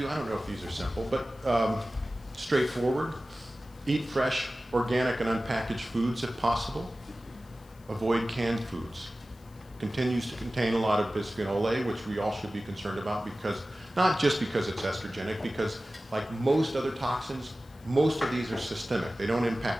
I don't know if these are simple, but straightforward. Eat fresh, organic, and unpackaged foods if possible. Avoid canned foods. Continues to contain a lot of bisphenol A, which we all should be concerned about, because not just because it's estrogenic, because like most other toxins, most of these are systemic. They don't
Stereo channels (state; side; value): noise; left; hiss, 30 dB below the sound